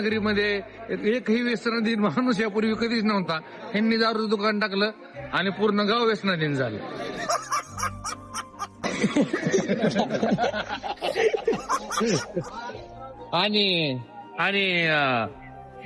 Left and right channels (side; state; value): both; identical; correlation 1.00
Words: एकही व्यसनाधीन माणूस यापूर्वी कधीच नव्हता. ह्यांनी दारूचं दुकान टाकलं आणि पूर्ण गाव व्यसनाधीन झालं. आणि आणि